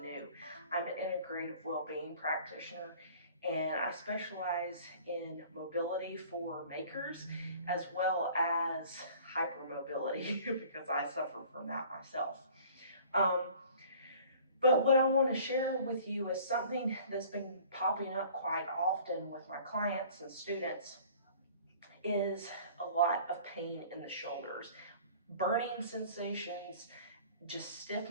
new. I'm an integrative well-being practitioner, and I specialize in mobility for makers as well as hypermobility because I suffer from that myself. Um, but what I want to share with you is something that's been popping up quite often with my clients and students is a lot of pain in the shoulders, burning sensations, just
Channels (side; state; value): both; inverted; correlation -0.49